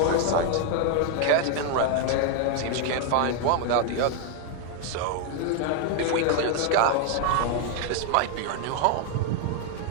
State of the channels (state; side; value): different; both; correlation 0.00